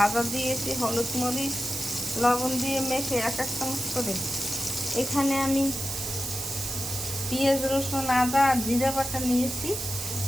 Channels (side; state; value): right; noise; hiss, 5 dB below the sound